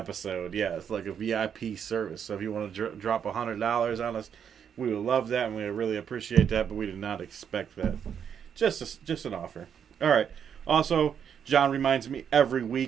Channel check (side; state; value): left; quieter; 8.0 dB